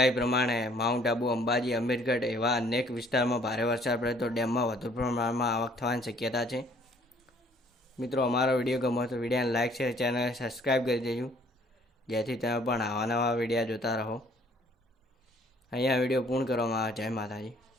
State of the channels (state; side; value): normal; both; correlation 0.60